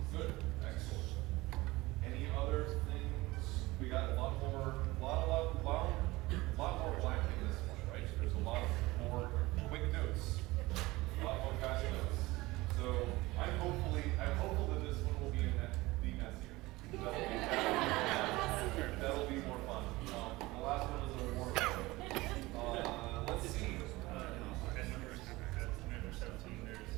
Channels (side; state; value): left; quieter; 20.4 dB